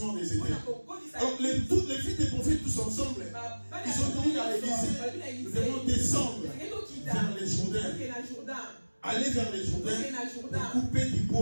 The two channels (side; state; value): both; inverted; correlation -1.00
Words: des éternels. Alors, toutes les filles des prophètes, tous ensemble, ils ont dit à l'Élysée, nous devons descendre vers les Jourdains. Aller vers les Jourdains pour couper du